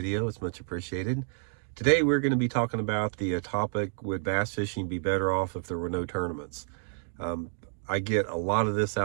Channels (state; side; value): silent; left; 55 dB below the other